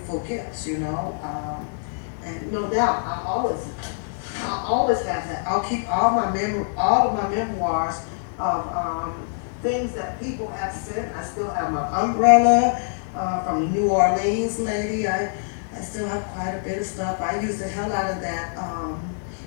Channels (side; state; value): right; silent; 55 dB below the other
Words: gifts, you know. And no doubt, I'll always have that. I'll keep all of my memoirs of things that people have sent. I still have my umbrella. from the New Orleans lady. I still have quite a bit of stuff. I use the hell out of that